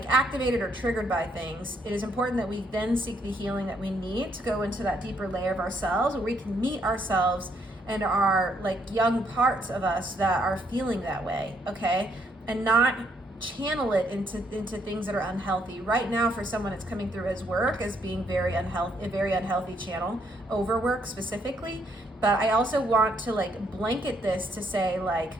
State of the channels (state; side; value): normal; both; correlation 0.72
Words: activated or triggered by things, it is important that we then seek the healing that we need to go into that deeper layer of ourselves, where we can meet ourselves and our like young parts of us that are feeling that way, okay, and not channel it into things that are unhealthy. Right now, for someone, it's coming through as work, as being very unhealthy, a very unhealthy channel, overwork specifically. But I also want to like blanket this to say, like,